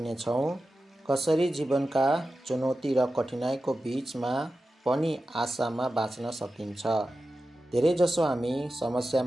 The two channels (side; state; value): both; normal; correlation 0.93